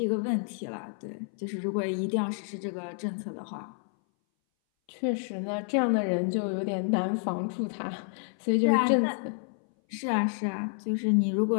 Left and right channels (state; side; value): silent; right; 58 dB below the other